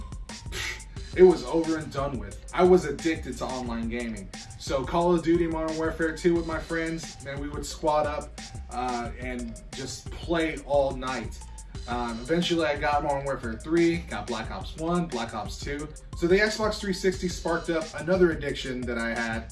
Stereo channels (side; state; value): both; identical; correlation 1.00